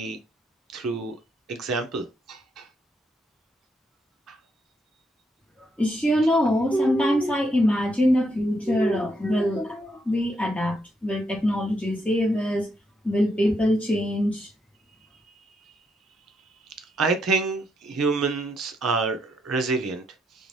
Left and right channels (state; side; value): normal; both; correlation 0.78